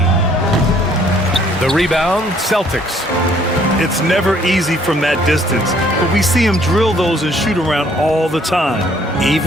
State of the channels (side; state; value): both; normal; correlation 0.62